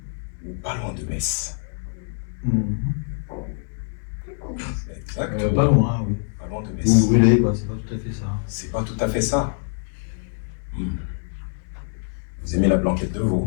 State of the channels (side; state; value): right; silent; digital silence